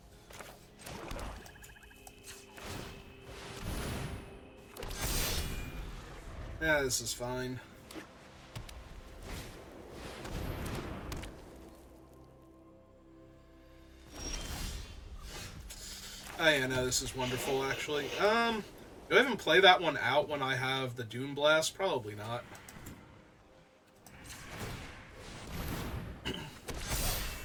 Yeah, this is fine. Oh yeah, no, this is wonderful, actually. Do I even play that one out when I have the Dune Blast? Probably not.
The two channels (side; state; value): both; identical; correlation 1.00